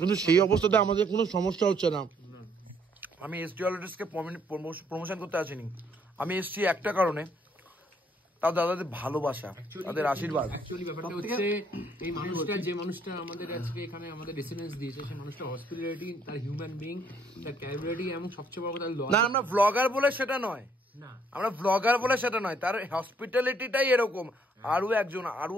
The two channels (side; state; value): both; normal; correlation 0.67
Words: সেই অবস্থাতে আমাদের কোনো সমস্যা হচ্ছে না। আমি এসডি অলরেডিসকে প্রমোশন করতে আসিনি, আমি এসছি একটা কারণে, তাও দাদাদের ভালোবাসা, তাদের আশীর্বাদ। অ্যাকচুয়ালি ব্যাপারটা হচ্ছে, এই মানুষটা, যে মানুষটা আমাদের আজকে এখানে আমাদের রেসিডেন্স দিয়েছে, সেই মানুষটা হসপিটালিটি, তার হিউম্যান বিং, তার ক্যাপাবিলিটি, এবং সবচেয়ে বড় কথা না, আমরা ব্লগার বলে সেটা নয়, তার হসপিটালিটিটাই এরকম। আরো